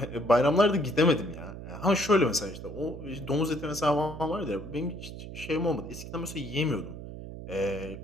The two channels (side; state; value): right; noise; hum, 11 dB below the sound